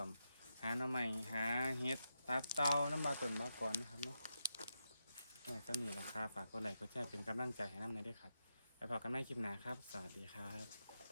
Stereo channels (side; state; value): both; inverted; correlation -0.86